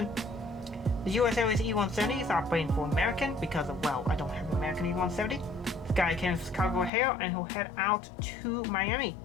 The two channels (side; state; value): right; drops out; at 6.9 s